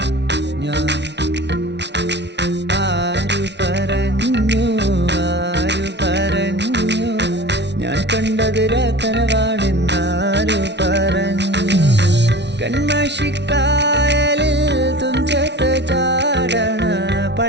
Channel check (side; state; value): left; late; 0.50 ms